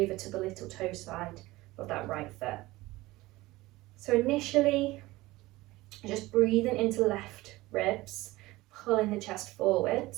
to the little toe side of that right foot. So initially, just breathing into left ribs, pulling the chest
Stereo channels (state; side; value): quieter; left; 19.3 dB